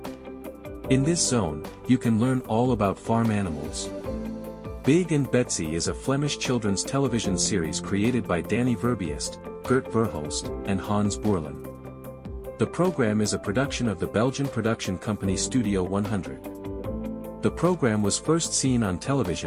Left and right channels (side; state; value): both; identical; correlation 1.00